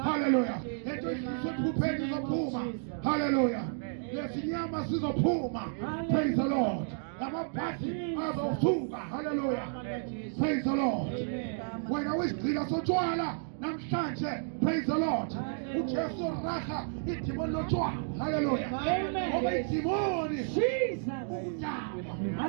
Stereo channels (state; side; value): silent; left; digital silence